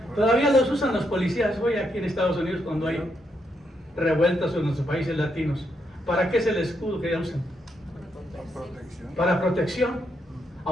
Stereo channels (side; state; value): both; normal; correlation 0.78